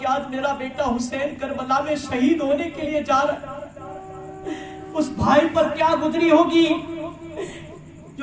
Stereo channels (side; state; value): both; identical; correlation 1.00